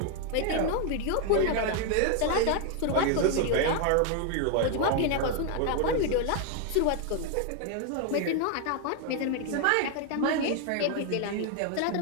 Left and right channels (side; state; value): both; different; correlation 0.00